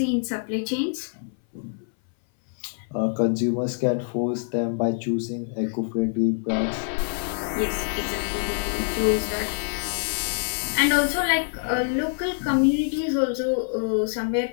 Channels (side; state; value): right; silent; 59 dB below the other